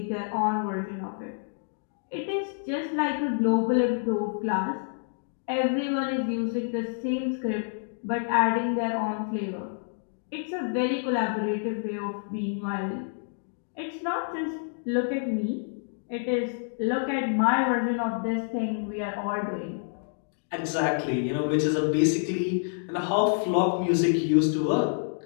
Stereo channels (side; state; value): right; silent; digital silence